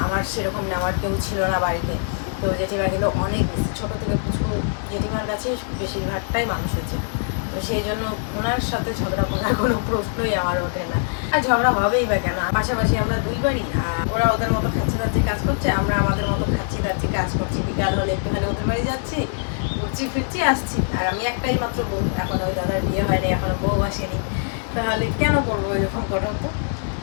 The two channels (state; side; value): silent; right; digital silence